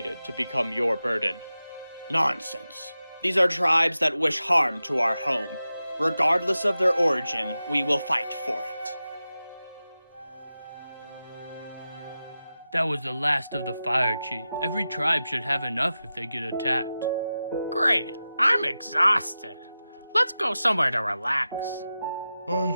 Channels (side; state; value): both; inverted; correlation -0.93